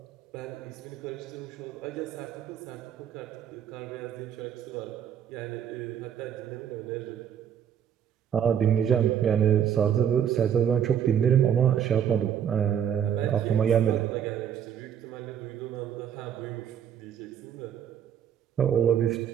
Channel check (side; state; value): left; quieter; 8.9 dB